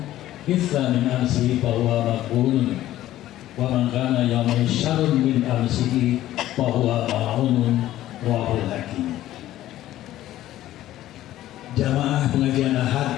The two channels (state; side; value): quieter; right; 14.0 dB